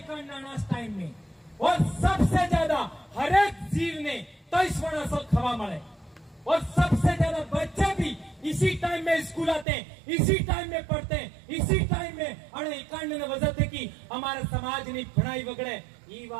टाइम में और सबसे ज्यादा हर एक जीव ने 23 वर्ष खवा मळे और सबसे ज्यादा बच्चे भी इसी टाइम में स्कूल आते हैं, इसी टाइम में पढ़ते हैं, इसी टाइम में अरे एकांत ने वजह थे कि हमारे समाज ने पढ़ाई बगड़े ये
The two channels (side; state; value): left; drops out; at 9.7 s